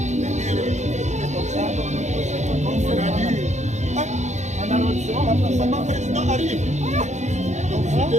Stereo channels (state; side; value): late; left; 0.34 ms